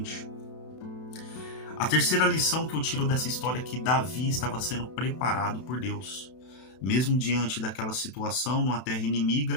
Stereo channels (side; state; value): right; late; 32 ms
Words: A terceira lição que eu tiro dessa história é que Davi estava sendo preparado por Deus. Mesmo diante daquela situação, numa terra